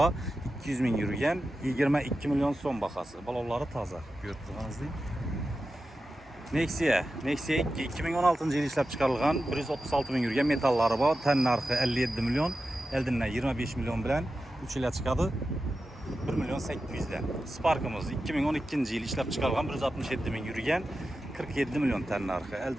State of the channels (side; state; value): both; normal; correlation 0.92